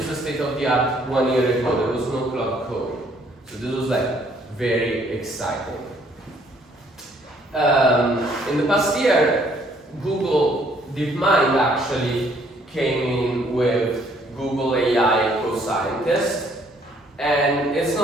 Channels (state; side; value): normal; both; correlation 0.64